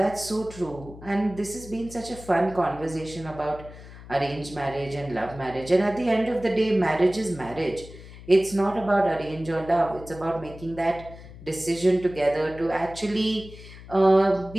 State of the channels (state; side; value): noise; left; hum, 17 dB below the sound